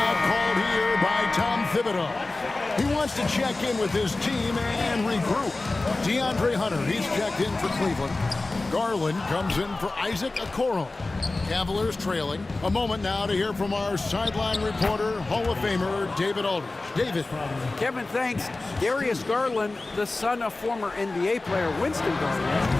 called here by Tom Thibodeau. He wants to check in with his team and regroup. DeAndre Hunter, he's checked in for Cleveland. Garland comes in for Isaac Okoro. Cavaliers trailing. A moment now to hear from our sideline reporter, Hall of Famer David Aldridge. David. Kevin, thanks. Darius Garland, the son of former NBA player Winston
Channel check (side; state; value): right; quieter; 3.2 dB